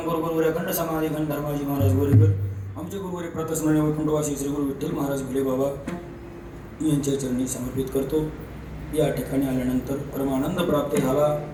गुरु गुरुवर्य अखंड समाधी खंड धर्माजी महाराज गोरेकर आमचे गुरुवर्य प्रतस्मरणीय वैकुंठवासी श्री गुरु विठ्ठल महाराज घुले बाबा यांच्या चरणी समर्पित करतो. या ठिकाणी आल्यानंतर परमानंद प्राप्त झाला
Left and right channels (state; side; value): identical; both; correlation 1.00